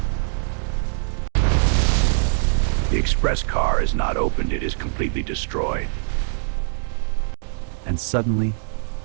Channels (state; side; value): silent; left; digital silence